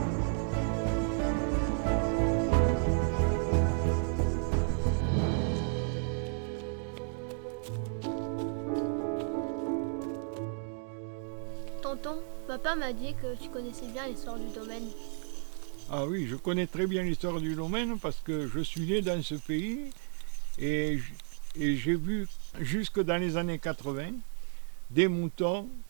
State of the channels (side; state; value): left; silent; 56 dB below the other